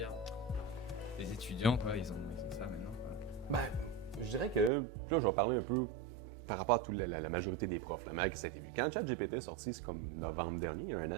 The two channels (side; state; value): left; drops out; at 4.7 s